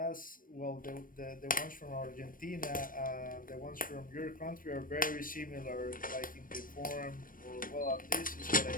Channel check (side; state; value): right; late; 0.40 ms